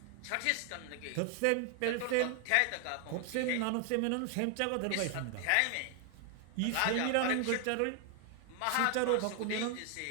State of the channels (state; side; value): different; both; correlation 0.00